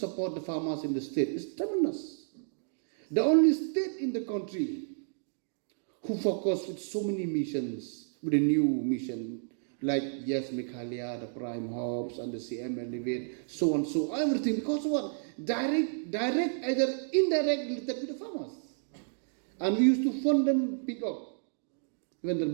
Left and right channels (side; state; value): left; silent; digital silence